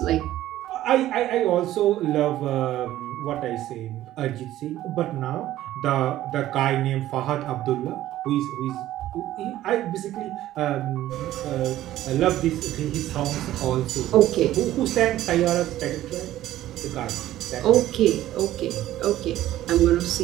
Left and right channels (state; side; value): quieter; left; 14.0 dB